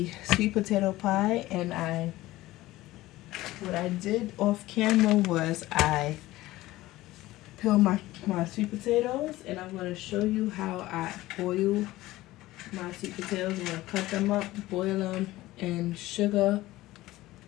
sweet potato pie. And what I did off camera was I peeled my sweet potatoes, and I'm gonna show you how I boil my sweet potatoes. I'm gonna cut them up, boil them in sugar,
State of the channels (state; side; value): quieter; right; 17.3 dB